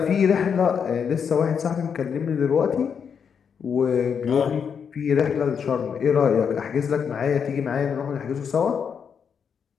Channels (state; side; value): quieter; right; 7.0 dB